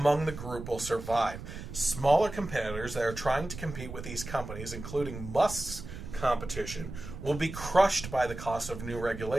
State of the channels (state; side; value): noise; right; rumble, 10 dB below the sound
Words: the group will survive. Smaller competitors that are trying to compete with these companies, including Musk's competition, will be crushed by the cost of new